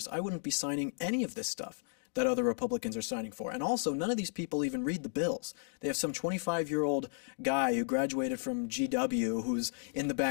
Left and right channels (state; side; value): silent; right; digital silence